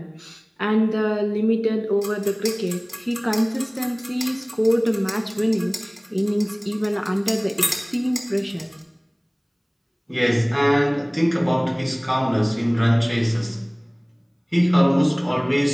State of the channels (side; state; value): both; identical; correlation 1.00